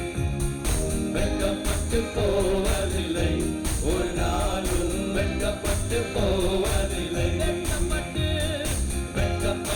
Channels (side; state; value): both; identical; correlation 1.00